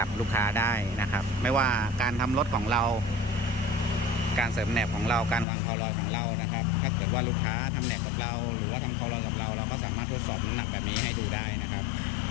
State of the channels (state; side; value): drops out; right; at 5.5 s